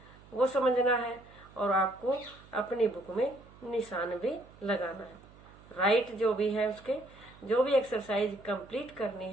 वो समझना है और आपको अपनी बुक में निशान भी लगाना है। राइट जो भी है उसके जो भी एक्सरसाइज कंप्लीट करनी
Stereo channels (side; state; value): right; noise; hum, 23 dB below the sound